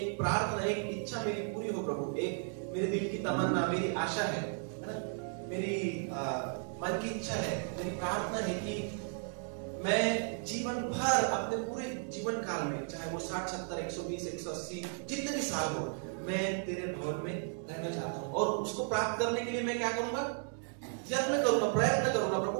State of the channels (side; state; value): left; silent; 55 dB below the other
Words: प्रार्थना, एक इच्छा मेरी पूरी हो प्रभु, एक मेरे दिल की तमन्ना, मेरी आशा है ना, मेरी मन की इच्छा है, मेरी प्रार्थना है कि मैं जीवन भर, अपने पूरे जीवन काल में, चाहे वो 60, 70, 120, 180 जितने भी साल हो, मैं तेरे भवन में रहना चाहता हूँ। और उसको प्राप्त करने के लिए मैं क्या करूंगा? यत्न करूंगा, प्रयत्न करूंगा